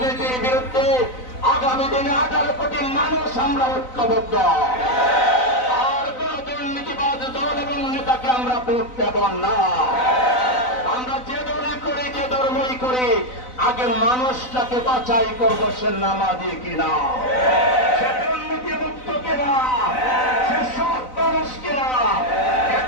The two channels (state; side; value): late; right; 4.0 ms